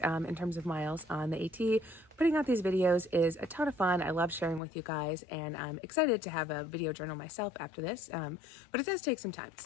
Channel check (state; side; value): drops out; right; at 4.6 s